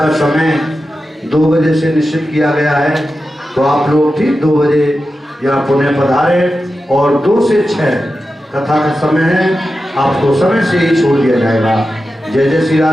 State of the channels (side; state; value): both; normal; correlation 0.91